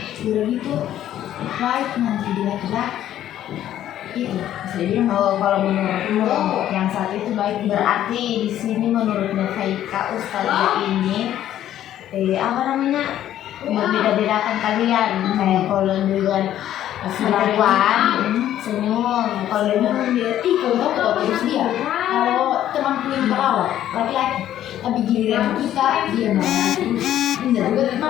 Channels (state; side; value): quieter; right; 11.9 dB